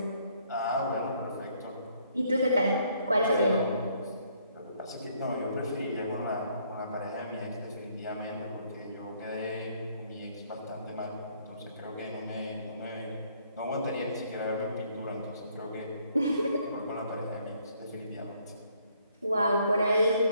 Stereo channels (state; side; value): inverted; both; correlation -0.67